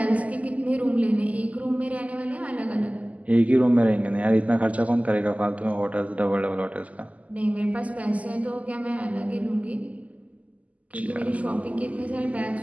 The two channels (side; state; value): left; late; 0.072 ms